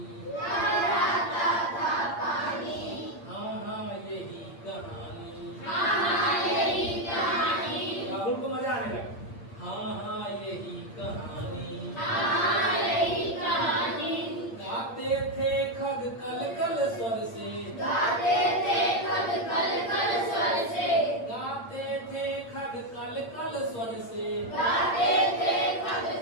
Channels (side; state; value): right; late; 8.6 ms